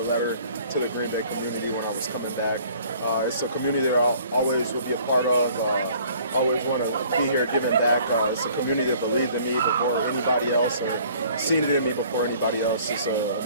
a letter to the Green Bay community when I was coming back. It's a community that I always will be a part of. Always want to be here giving back. It's a community that believed in me before anybody else and seen it in me before anybody else. It's an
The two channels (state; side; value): inverted; both; correlation -0.55